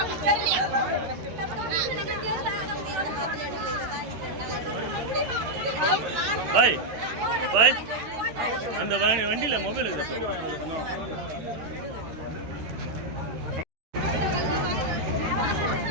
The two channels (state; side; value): late; left; 13 ms